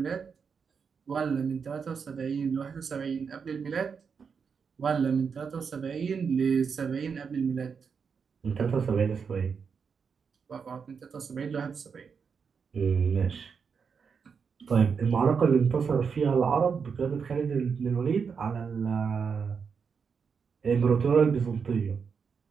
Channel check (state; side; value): quieter; left; 6.0 dB